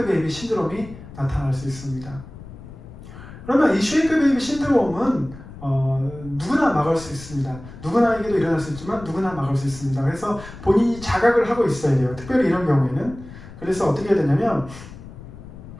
베이비 신드롬이 나타날 수 있습니다. 그러면 이 쉐이크 베이비 신드롬은 누구나 막을 수 있습니다. 누구나에게도 일어날 수 있지만 누구나 막을 수 있습니다. 그래서 본인이 자각을 하고 있어야 돼요. 특별히 이런 경우에는. 그래서 어떻게 해야 되냐면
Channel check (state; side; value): noise; left; rumble, 15 dB below the sound